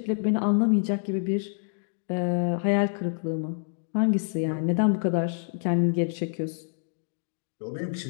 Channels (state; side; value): silent; right; digital silence